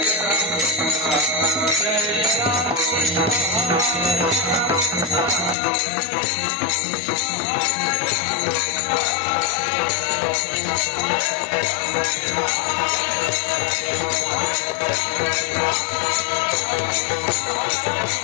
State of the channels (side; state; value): right; drops out; at 5.6 s